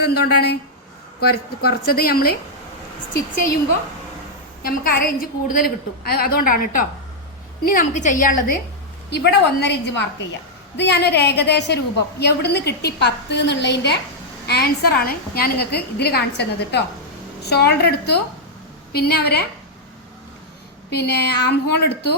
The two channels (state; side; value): normal; both; correlation -0.04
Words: എന്തുകൊണ്ടാണ്? കുറച്ചത് നമ്മൾ സ്റ്റിച്ച് ചെയ്യുമ്പോൾ നമുക്ക് 1/2 ഇഞ്ച് കൂടുതൽ കിട്ടും. അതുകൊണ്ടാണ് കേട്ടോ. ഇനി നമുക്ക് ചെയ്യാനുള്ളത് ഇവിടെ 1.5 ഇഞ്ച് മാർക്ക് ചെയ്യാം. ഇത് ഞാനൊരു ഏകദേശ രൂപം എവിടുന്ന് കിട്ടി 10 എന്നുള്ളതിൻ്റെ ആൻസറാണ് ഞാൻ നിങ്ങൾക്ക് ഇതിൽ കാണിച്ചു തന്നത് കേട്ടോ. ഷോൾഡർ എടുത്തു, പിന്നെ ആം ഹോൾ എടുത്തു,